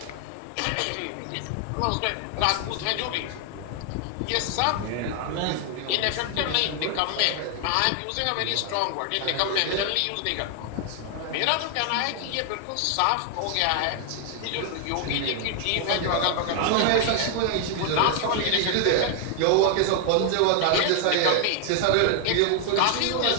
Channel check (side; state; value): both; different; correlation 0.00